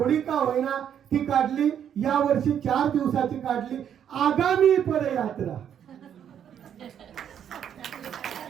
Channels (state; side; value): quieter; left; 9.1 dB